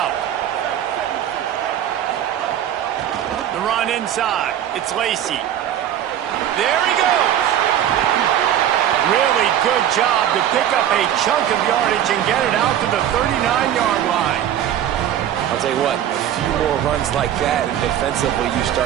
The run inside. It's Lacy. There he goes. Really good job to pick up a chunk of yardage and get it out to the 39-yard line. I'll tell you what, a few more runs like that, and defensively you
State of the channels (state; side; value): quieter; left; 10.8 dB